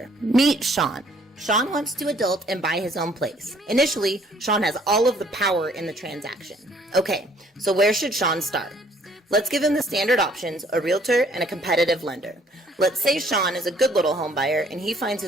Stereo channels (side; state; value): both; normal; correlation 0.61